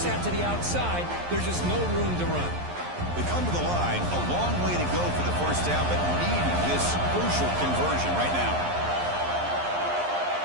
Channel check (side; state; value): left; late; 11 ms